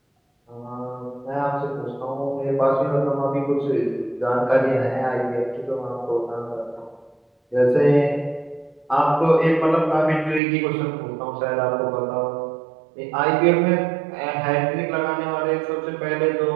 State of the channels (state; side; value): drops out; left; at 10.4 s